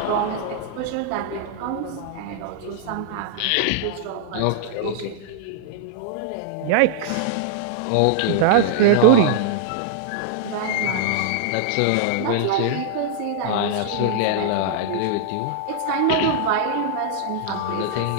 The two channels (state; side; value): different; both; correlation -0.01